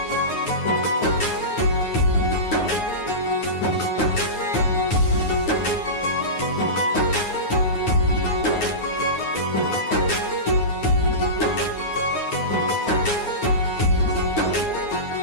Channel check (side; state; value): right; late; 9.6 ms